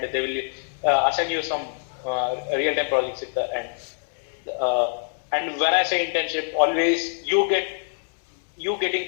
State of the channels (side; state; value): right; silent; 62 dB below the other